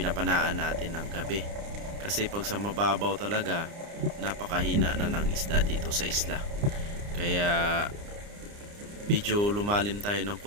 natin ng gabi. Kasi pag sa mababaw talaga, napakahina na ng isda dito sa isla. Kaya medyo lumalim tayo ng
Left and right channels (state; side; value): late; left; 29 ms